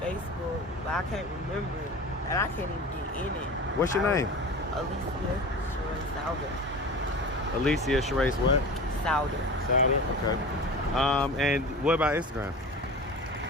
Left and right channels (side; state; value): both; normal; correlation 0.34